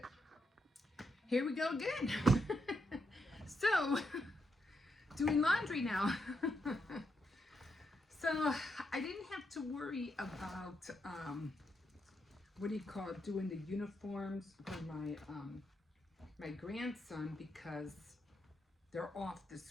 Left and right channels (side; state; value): both; normal; correlation 0.82